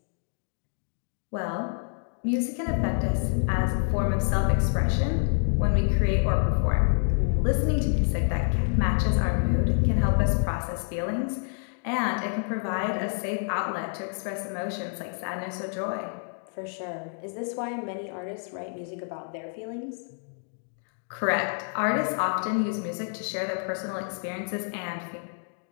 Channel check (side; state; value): right; silent; 59 dB below the other